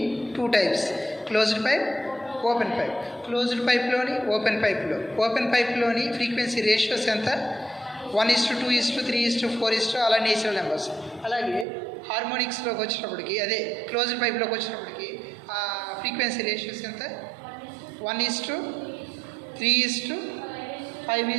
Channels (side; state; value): left; drops out; at 11.7 s